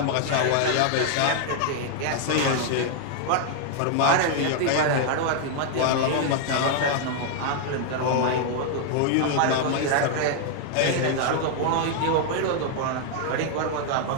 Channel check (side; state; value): both; different; correlation 0.00